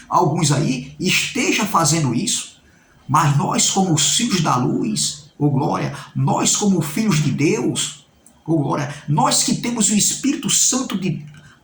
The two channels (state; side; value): identical; both; correlation 1.00